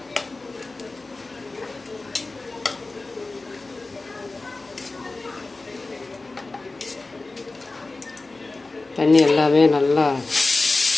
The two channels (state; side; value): quieter; right; 3.4 dB